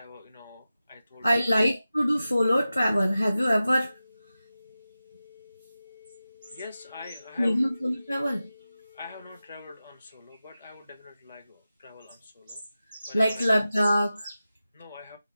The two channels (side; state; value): both; inverted; correlation -0.94